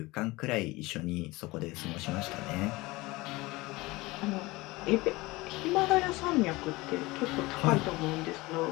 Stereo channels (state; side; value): quieter; right; 21.5 dB